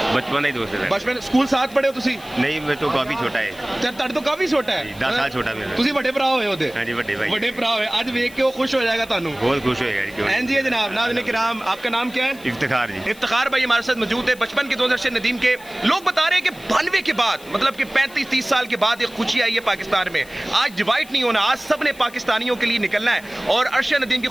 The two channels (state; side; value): noise; left; hiss, 21 dB below the sound